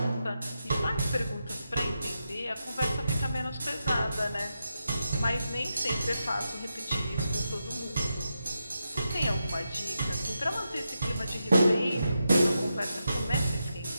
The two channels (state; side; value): inverted; both; correlation -0.87